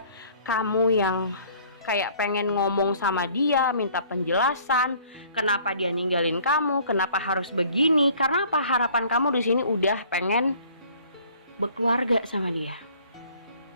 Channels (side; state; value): both; inverted; correlation -0.54